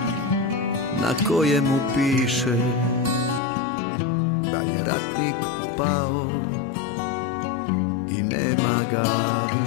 na kojemu piše da je ratnik pao i nema ga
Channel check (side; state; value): right; drops out; at 3.4 s